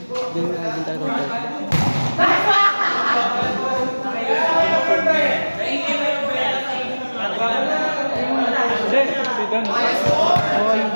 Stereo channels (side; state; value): both; inverted; correlation -1.00